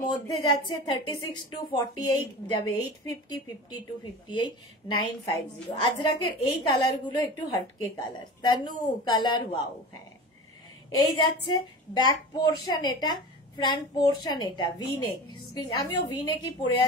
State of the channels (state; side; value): normal; both; correlation 0.34